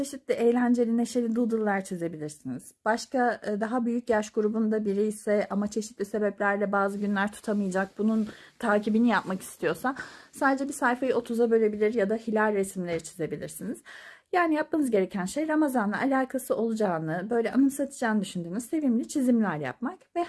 eğlenceli, neşeli doodle'lar çizebilirsiniz. Başka daha büyük yaş grubunda biri ise ama çeşitli sebeplerle bazı günler tutamayacak, bunun takibini yapmak istiyorsa sadece bir sayfayı 30'a bölebilir ya da hilal resimleri çizebilirsiniz. Yani yapmanız gereken şey Ramazan'la alakası olacağını, böyle anımsatacağını düşündüğünüz sevimli çizimler yapmak ve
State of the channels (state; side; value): identical; both; correlation 1.00